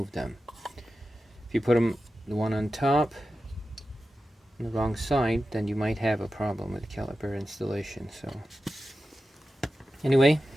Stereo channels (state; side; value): normal; both; correlation 0.92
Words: them. If you put them, the one on top, on the wrong side, then you might have a problem with caliper installation. So anyway,